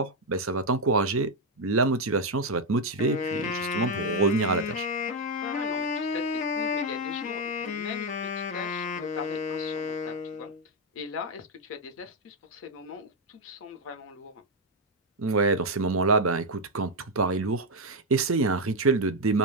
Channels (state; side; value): normal; both; correlation 0.04